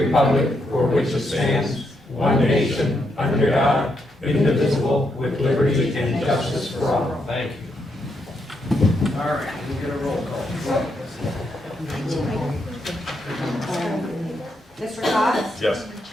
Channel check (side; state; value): both; normal; correlation 0.80